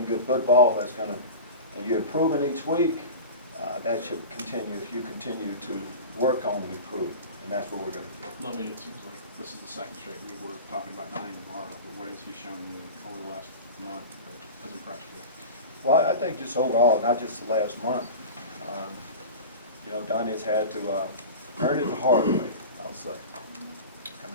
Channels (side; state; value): both; inverted; correlation -0.31